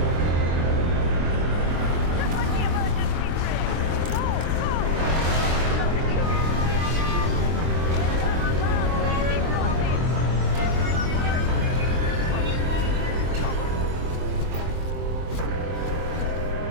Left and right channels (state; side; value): late; left; 23 ms